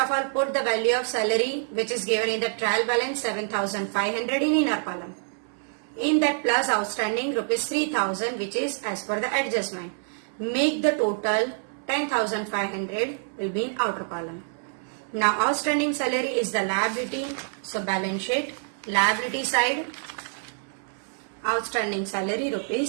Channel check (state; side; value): silent; left; 61 dB below the other